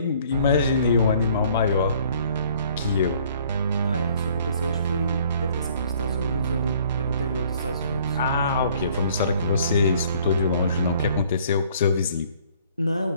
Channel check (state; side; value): inverted; both; correlation -0.58